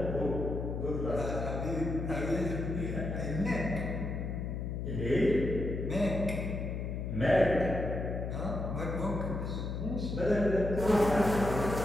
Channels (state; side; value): noise; left; hum, 3 dB below the sound